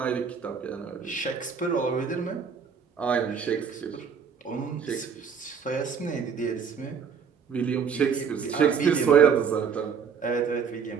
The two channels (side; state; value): left; quieter; 6.5 dB